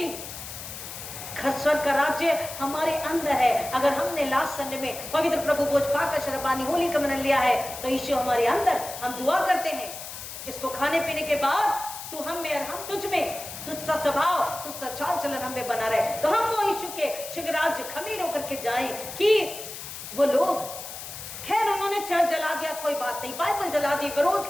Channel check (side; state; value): left; noise; hiss, 10 dB below the sound